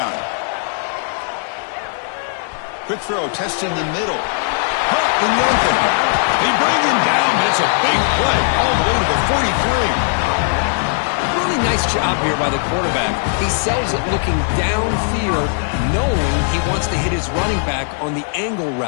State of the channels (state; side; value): silent; right; 64 dB below the other